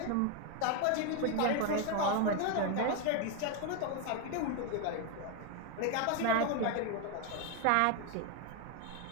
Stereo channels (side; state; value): both; different; correlation 0.01